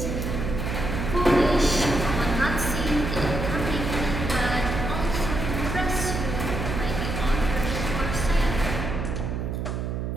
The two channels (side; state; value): right; noise; hum, 3 dB below the sound